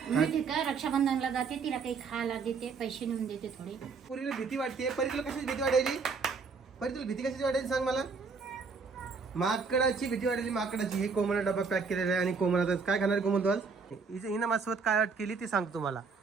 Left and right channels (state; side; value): quieter; left; 5.0 dB